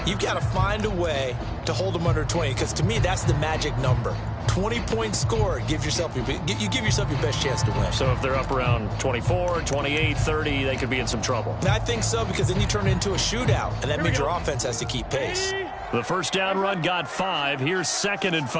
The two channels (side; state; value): both; identical; correlation 1.00